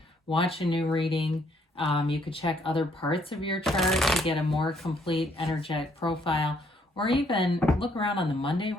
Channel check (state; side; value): normal; both; correlation 0.68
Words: watch a new reading. You could check other parts of your chart to get a more complete energetic profile, or even look around on the Monday